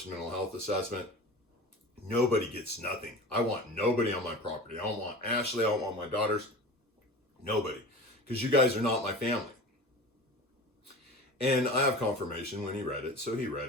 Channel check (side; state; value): both; normal; correlation 0.35